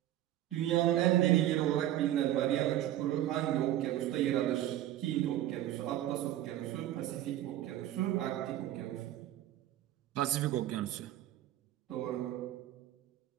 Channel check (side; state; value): left; quieter; 13.1 dB